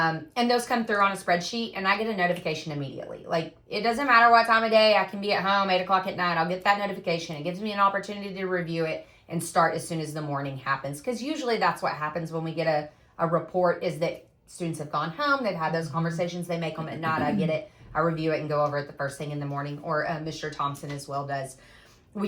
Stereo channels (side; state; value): both; identical; correlation 1.00